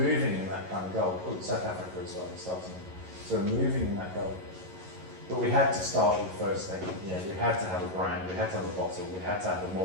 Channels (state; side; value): late; left; 11 ms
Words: in that kind of goal. Oh, South Africa as well, we're starting. So we're moving in that goal. But we had to start with the first thing. You know, we had to have a brand, we had to have a bottle, we had to have a